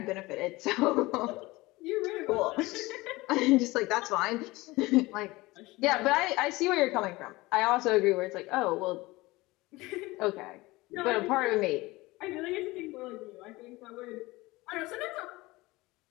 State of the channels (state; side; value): quieter; right; 21.0 dB